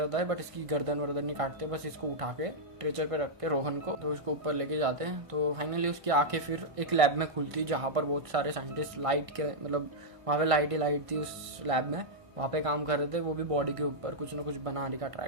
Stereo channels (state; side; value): late; left; 1.5 ms